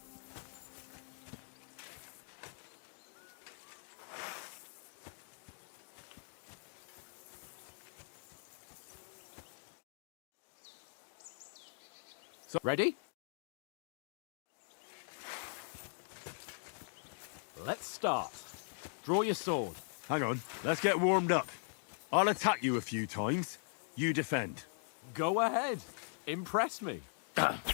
Ready? Let's start. Draw your sword. Hang on. Let's get warmed up. I'll attack you a few times. You defend. Go ahead. Impress me.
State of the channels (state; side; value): silent; right; digital silence